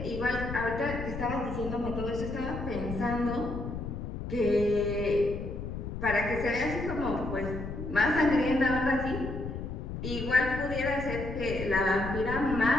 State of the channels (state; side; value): noise; left; rumble, 6 dB below the sound